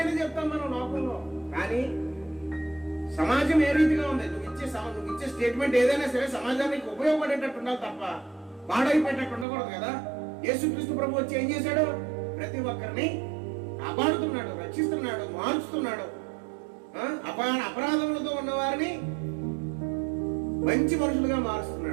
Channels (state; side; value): drops out; left; at 9.5 s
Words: చెప్తాం మనం లోకంలో, కానీ సమాజం ఏ రీతిగా ఉంది? నువ్వు ఇచ్చే స్టేట్మెంట్ ఏదైనా సరే సమాజానికి ఉపయోగపడేటట్టు ఉండాలి తప్ప పాడైపోయేటట్టు ఉండకూడదు కదా. యేసుక్రీస్తు ప్రభు వచ్చి ఏం చేశాడు? ప్రతి ఒక్కరిని కాపాడుతున్నాడు, రక్షిస్తున్నాడు, మార్చుతున్నాడు. అపరాధములతో ఉన్న వారిని మంచి మనుషులుగా